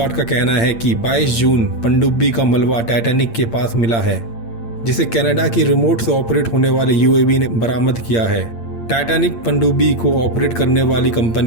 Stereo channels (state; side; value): late; right; 8.7 ms